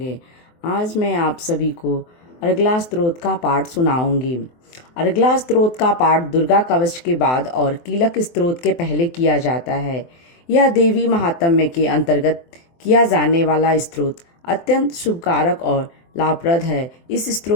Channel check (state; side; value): late; right; 24 ms